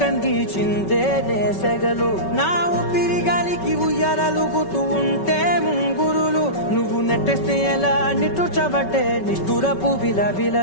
కందిచిందే నేసెగలు నా ఊపిరి గాలికి ఉయ్యాలలుగుతూ ఉంటే ముంగురులు నువ్వు నెట్టేస్తే ఎలా నిట్టుచబట్టే నిష్ఠురపు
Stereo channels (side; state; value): right; late; 5.3 ms